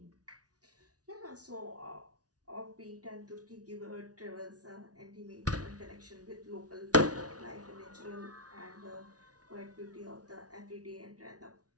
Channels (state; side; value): late; left; 0.68 ms